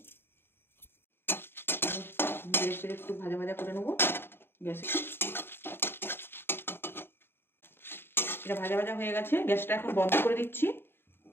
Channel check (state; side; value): late; right; 0.11 ms